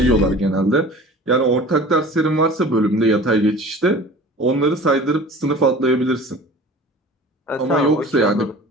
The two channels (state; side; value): normal; both; correlation 0.42